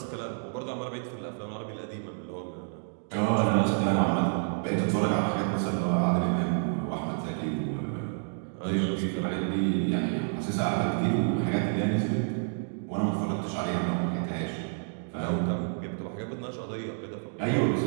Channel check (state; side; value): silent; left; 58 dB below the other